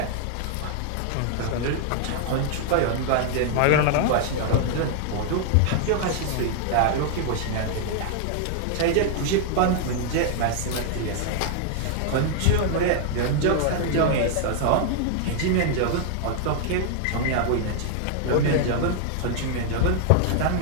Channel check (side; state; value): both; different; correlation 0.00